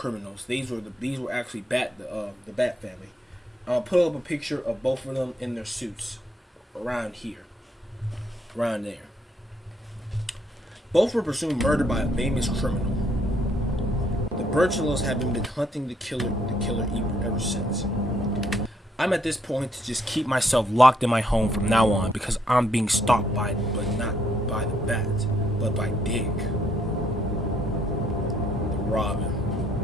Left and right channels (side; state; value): both; normal; correlation 0.71